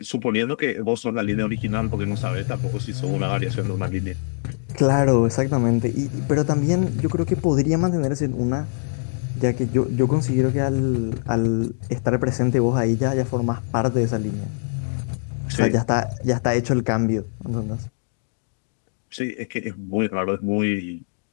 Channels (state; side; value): silent; right; digital silence